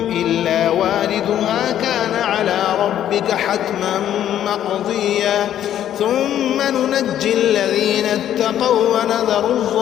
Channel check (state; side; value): quieter; right; 11.0 dB